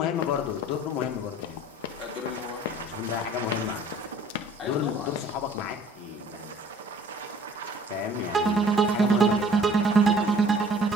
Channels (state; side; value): normal; both; correlation 0.52